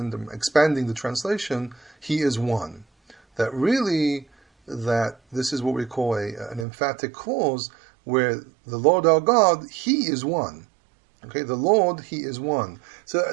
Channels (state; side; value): drops out; left; at 6.7 s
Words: expanding the translation, He is one. That really, that this is what we call an emphatic clause, where the Lord our God, He is one. Okay, the Lord, He is one. So